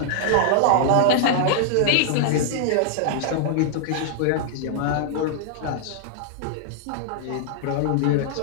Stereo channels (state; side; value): different; both; correlation -0.01